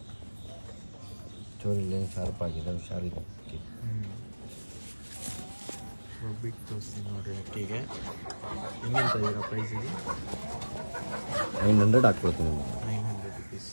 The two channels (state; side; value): inverted; both; correlation -1.00